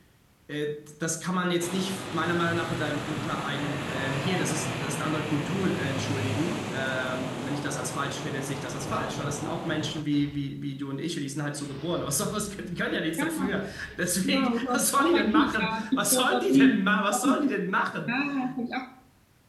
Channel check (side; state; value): both; identical; correlation 1.00